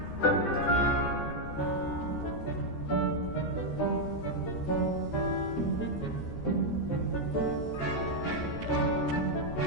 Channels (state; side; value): late; right; 13 ms